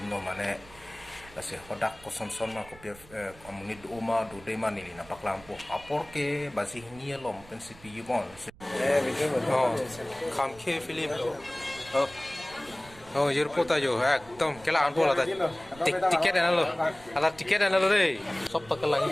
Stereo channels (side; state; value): right; noise; rumble, 22 dB below the sound